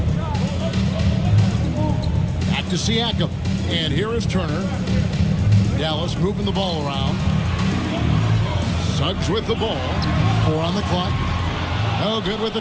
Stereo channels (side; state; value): both; identical; correlation 1.00